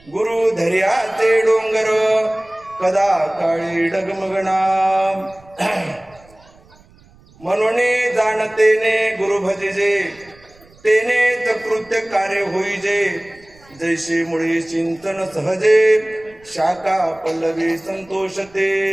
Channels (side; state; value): right; noise; rumble, 28 dB below the sound